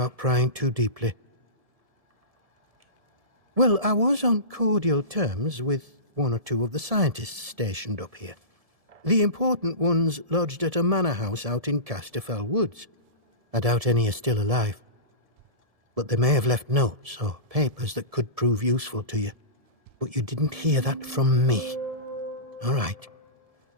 prying too deeply. Well, I was on cordial terms with one or two of the scientists stationed up here. The important ones lodged at a manor house out in Casterfell Woods. I doubt any are still alive. But they may have left notes or papers that could prove useful to you. But you didn't hear that from me. All right.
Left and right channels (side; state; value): left; late; 1.7 ms